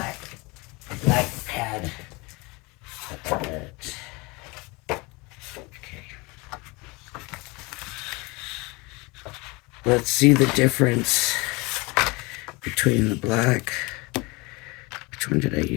pad. Okay. Let's see the difference between the black. Which one did I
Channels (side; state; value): right; quieter; 25.9 dB